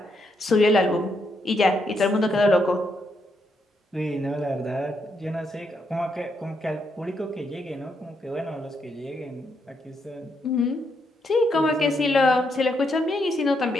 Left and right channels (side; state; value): both; normal; correlation 0.78